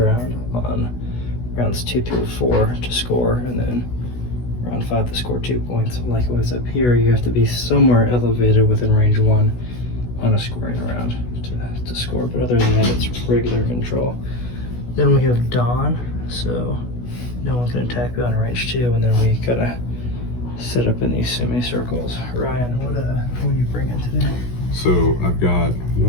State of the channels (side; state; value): right; late; 16 ms